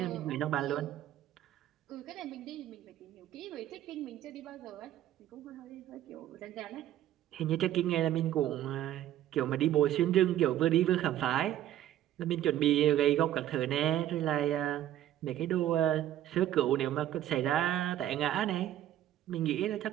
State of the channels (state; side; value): quieter; left; 12.4 dB